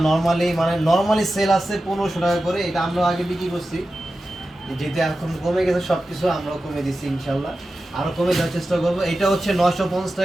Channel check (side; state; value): both; normal; correlation 0.93